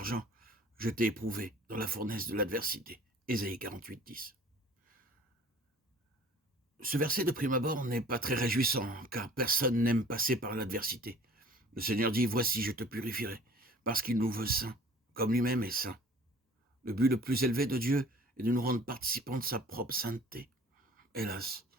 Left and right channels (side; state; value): both; normal; correlation 0.49